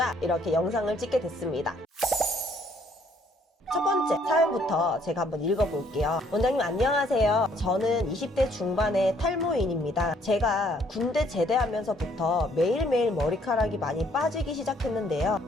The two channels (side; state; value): both; normal; correlation 0.65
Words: 이렇게 영상을 찍게 됐습니다. 첫 번째 사연부터 제가 한번 읽어볼게요. 원장님 안녕하세요. 저는 20대 중반의 탈모인입니다. 제가 군대 제대하면서부터 매일매일 머리카락이 많이 빠지기 시작했는데요.